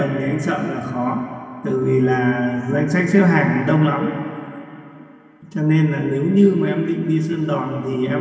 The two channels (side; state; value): both; identical; correlation 1.00